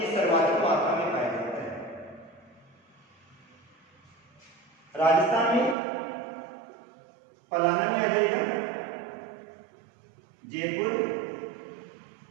सर्वाधिक मात्रा में पाया जाता है। राजस्थान में पलाना में आ जाएगा, जयपुर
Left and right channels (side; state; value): left; drops out; at 5.8 s